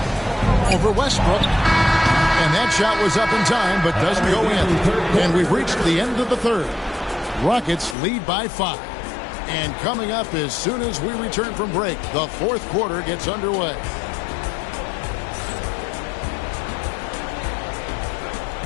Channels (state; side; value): drops out; right; at 8.0 s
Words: Over Westbrook. And that shot was up in time, but doesn't go in. And we've reached the end of the third. Rockets lead by 5. And coming up as soon as we return from break, the fourth quarter gets underway.